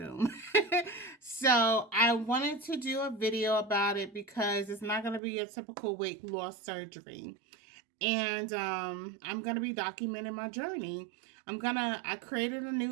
So I wanted to do a video about it because it's not going to be a typical weight loss surgery. And I'm going to be documenting my journey. I created a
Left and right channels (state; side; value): drops out; left; at 5.2 s